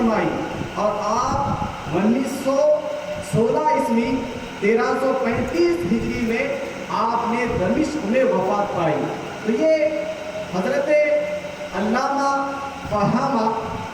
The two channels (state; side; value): identical; both; correlation 1.00